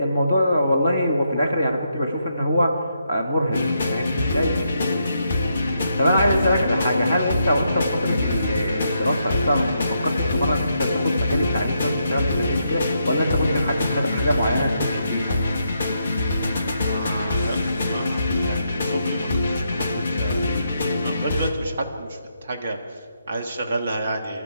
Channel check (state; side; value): inverted; both; correlation -0.79